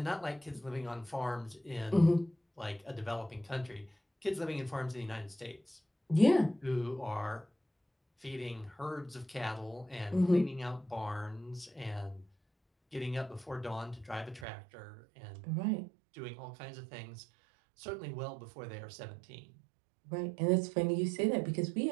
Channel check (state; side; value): drops out; left; at 14.5 s